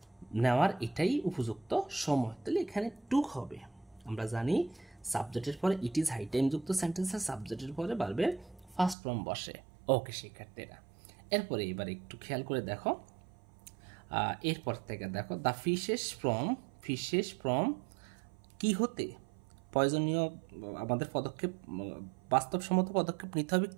নেওয়ার এটাই উপযুক্ত সময়। তাহলে এখানে টুক হবে, আমরা জানি সাবজেক্টের পরে ইট ইজ হাই টাইম যুক্ত সেন্টেন্সের সাবজেক্টের পরে ভার্বের ফার্স্ট ফর্ম বসে। ওকে শিক্ষার্থীরা, এরপরে এবার একটু খেয়াল করে দেখো, এরপর থেকে দেখো দ্য ফিশেস ফ্রম কি হতে, প্রয়োজনীয় আমাদের পদক্ষেপ, বাস্তবসম্মত পদক্ষেপ নিতে হবে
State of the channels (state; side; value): drops out; left; at 9.0 s